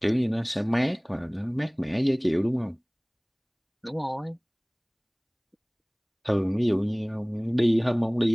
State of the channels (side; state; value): both; identical; correlation 1.00